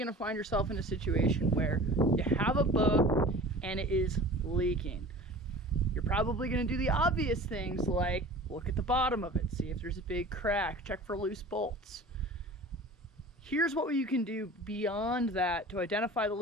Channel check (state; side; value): normal; both; correlation 0.40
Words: to find yourself in a situation where you have a boat and it is leaking. You're probably going to do the obvious things like look at the bottom of it, see if there's a big crack, check for loose bolts. Here's what you can do beyond that to identify the